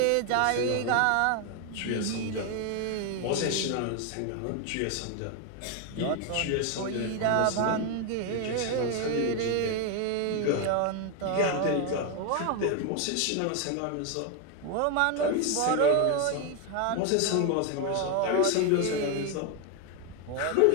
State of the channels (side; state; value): both; different; correlation 0.01